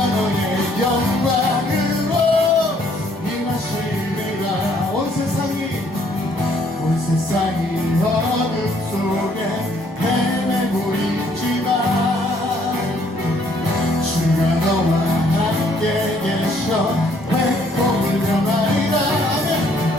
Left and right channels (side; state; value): both; normal; correlation 0.65